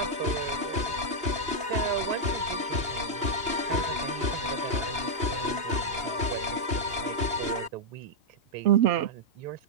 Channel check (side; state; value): left; late; 2.9 ms